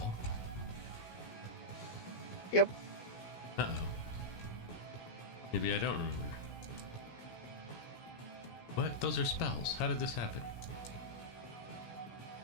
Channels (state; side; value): late; right; 17 ms